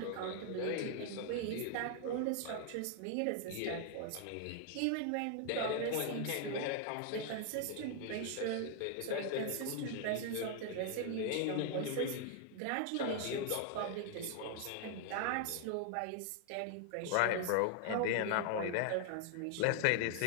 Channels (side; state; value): both; different; correlation 0.00